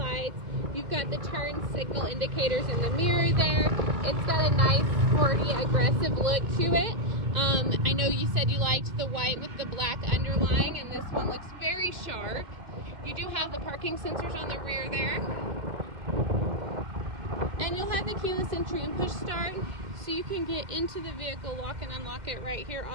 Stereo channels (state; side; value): late; left; 2.0 ms